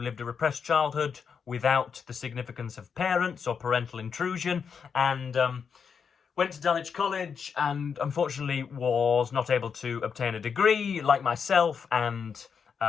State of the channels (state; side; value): quieter; right; 6.4 dB